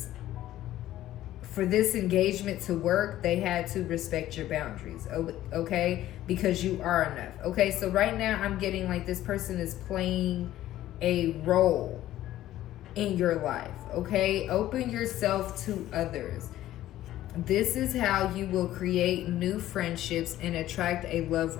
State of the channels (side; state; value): right; quieter; 13.9 dB